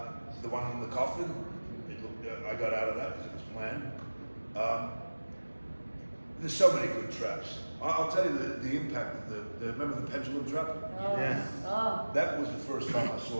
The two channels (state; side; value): inverted; both; correlation -1.00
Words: The one in the coffin, I got out of that because it was planned. There's so many good traps. I'll tell you the impact of remember the pendulum trap? Oh. Yeah. Oh. That was the first time I